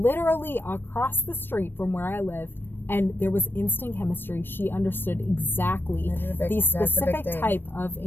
across the street from where I lived, and there was instant chemistry. She understood exactly the specific type of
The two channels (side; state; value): right; late; 0.097 ms